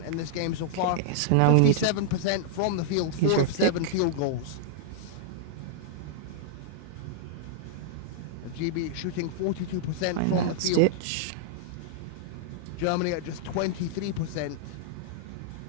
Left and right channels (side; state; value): both; different; correlation -0.01